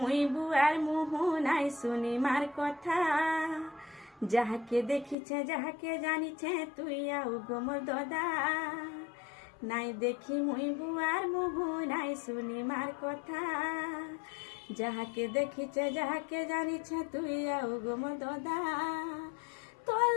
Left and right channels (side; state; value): right; drops out; at 5.2 s